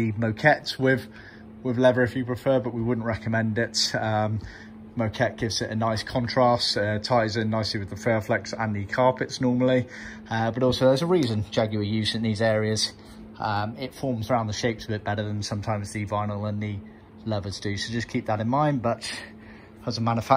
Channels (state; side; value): identical; both; correlation 1.00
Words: moquettes with leather if you prefer, but we wouldn't recommend it. Moquette gives it a nice contrast, ties in nicely with the Fairflex and the carpets normally, but also there's a reason Jaguar use in these areas. It forms around the shapes a bit better than sometimes the vinyl and the leathers do, so just keep that in mind. But as a